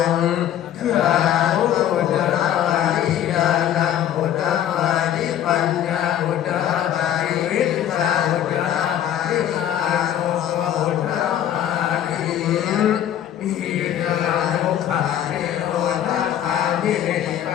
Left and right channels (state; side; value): quieter; right; 10.8 dB